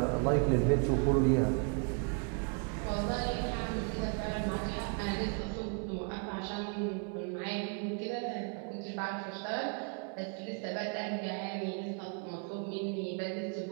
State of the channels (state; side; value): quieter; left; 40.0 dB